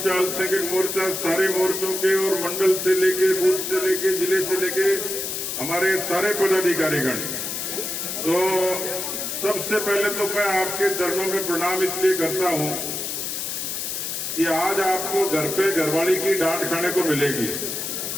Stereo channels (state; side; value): noise; left; hiss, 4 dB below the sound